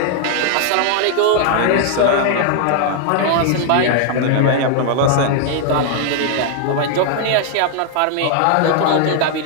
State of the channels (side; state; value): both; different; correlation 0.00